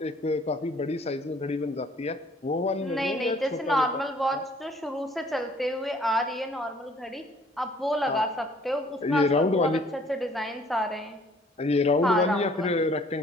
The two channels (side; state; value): both; normal; correlation 0.58